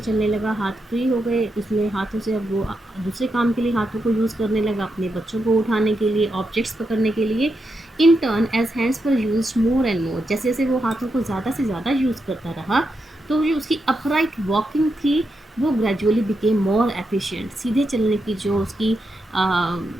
चलने लगा, हाथ फ्री हो गए, उसमें हाथों से अब वो दूसरे काम के लिए हाथों को यूज़ करने लगा, अपने बच्चों को उठाने के लिए, ऑब्जेक्ट्स पकड़ने के लिए। इन टर्न एज हैंड्स पर यूज मोर एंड मोर, जैसे जैसे वो हाथों को ज़्यादा से ज़्यादा यूज़ करता रहा, तो जो उसकी अपराइट वॉकिंग थी वो ग्रेजुअली बिकेम मोर एफिशिएंट। सीधे चलने की जो उसकी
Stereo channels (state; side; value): normal; both; correlation 0.85